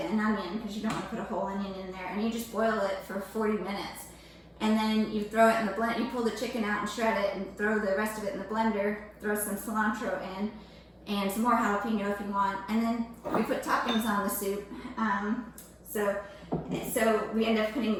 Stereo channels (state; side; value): identical; both; correlation 1.00